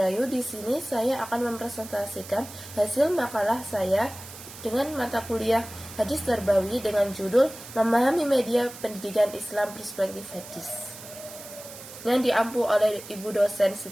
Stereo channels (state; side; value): noise; right; hiss, 15 dB below the sound